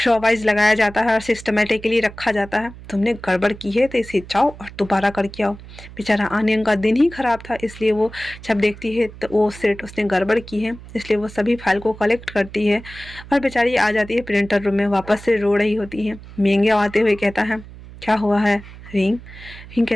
शॉवाइज लगाया जाता है और सिस्टमेटिकली रखा जाता है? तुमने गड़बड़ की है तो इसे जाओ और दोबारा करके आओ। बेचारा आनियंग का दिन ही खराब था, इसलिए वो जब देखती है तो वो सेट उसने गड़बड़ की है, इसलिए वो सभी फाइल को कलेक्ट करती है और बेचारी आ जाती है प्रिंटर रूम में, वापस से रो रही होती है। मेंगे आते हुए कहता है, क्या हुआ है रिंग? रिंग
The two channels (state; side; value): noise; right; hum, 17 dB below the sound